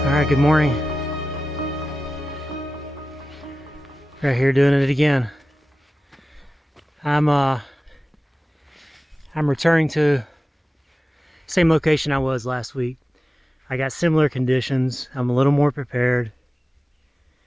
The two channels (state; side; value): normal; both; correlation 0.94